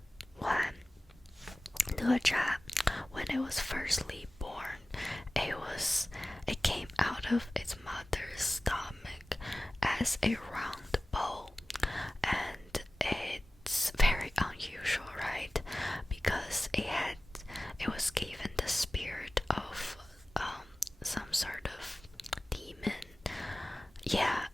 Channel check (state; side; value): normal; both; correlation 0.97